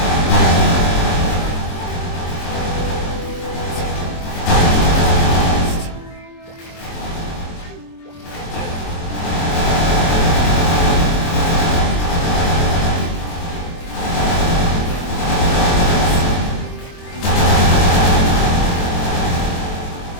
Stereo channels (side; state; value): right; late; 23 ms